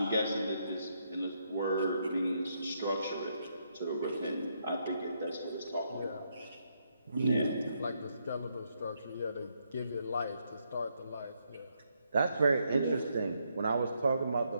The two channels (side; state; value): both; inverted; correlation -0.77